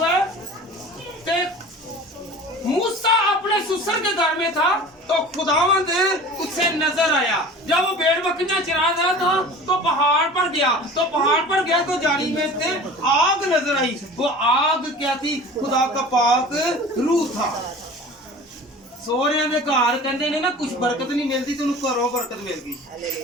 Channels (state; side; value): normal; both; correlation 0.40